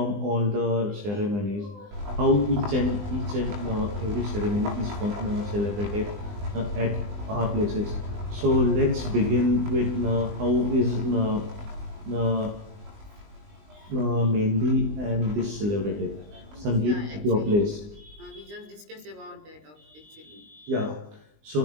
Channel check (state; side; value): late; left; 20 ms